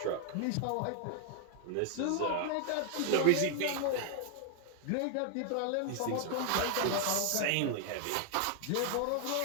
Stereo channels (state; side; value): different; both; correlation 0.00